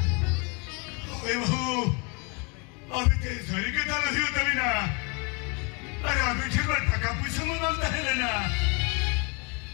ओए बहू अभी तेरे शरीर के दाल नहीं होता भी ना अरे अभी ठीक है टका पूछे में मांगता है लेना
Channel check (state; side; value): quieter; right; 32.3 dB